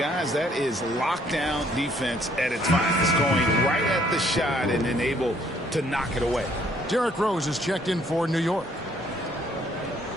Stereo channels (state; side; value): normal; both; correlation 0.64